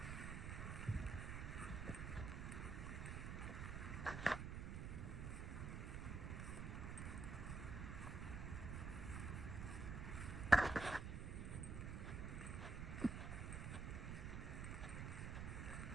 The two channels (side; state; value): right; noise; rumble, 3 dB below the sound